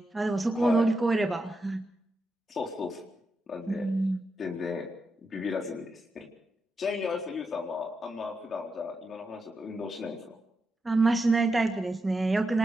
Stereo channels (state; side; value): normal; both; correlation 0.86